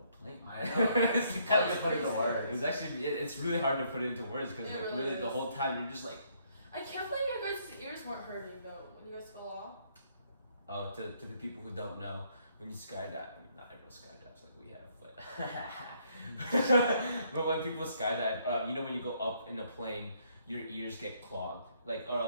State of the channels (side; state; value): both; inverted; correlation -0.69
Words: plane. I know. It's How do you put it into words? It's actually it's really hard to put it into words because It like, really really the is. whole time you're just like, I can't believe your guys' ears weren't hurting though when you guys fell off. oh, to the people who don't know, when you skydive, I mean, not everyone skydives like we have, but but when people skydive, you know when you go up in a plane, your ears get clogged, like